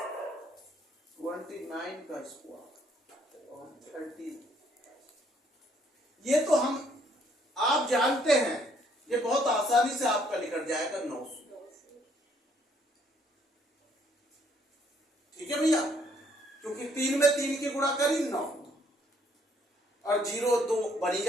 29 का स्क्वायर और 30। ये तो हम आप जानते हैं, ये बहुत आसानी से आपका निकल जाएगा 900। ठीक है भैया, क्योंकि 3 में 3 की गुणा करी 9 और 0 2 बनी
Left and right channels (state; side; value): normal; both; correlation 0.67